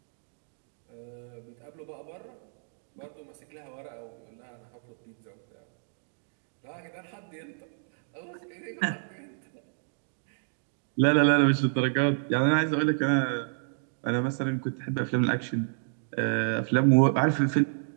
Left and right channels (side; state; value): left; silent; digital silence